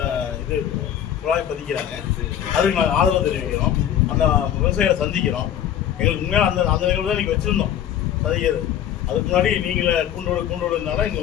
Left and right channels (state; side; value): quieter; right; 10.4 dB